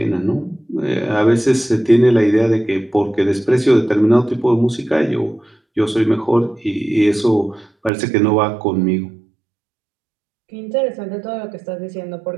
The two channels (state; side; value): drops out; left; at 7.9 s